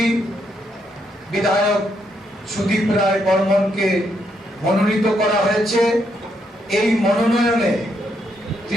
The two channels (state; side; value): normal; both; correlation 0.76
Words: বিধায়ক সুদীপ রায় বর্মনকে মনোনীত করা হয়েছে। এই মনোনয়নে